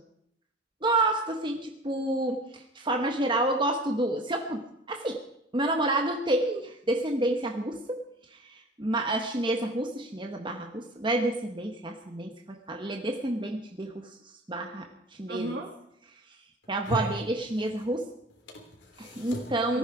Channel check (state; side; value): normal; both; correlation 0.42